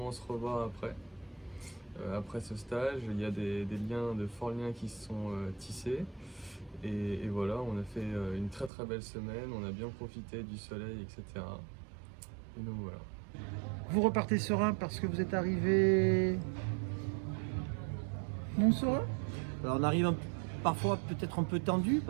se revoir après ce stage. Il y a des liens, de forts liens qui se sont tissés et voilà, on a fait une très très belle semaine, on a bien profité du soleil, etc. Et donc voilà. Vous repartez serein parce que vous êtes arrivé non serein? Alors on arrive parfois peut-être un peu tendu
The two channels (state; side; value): drops out; left; at 8.7 s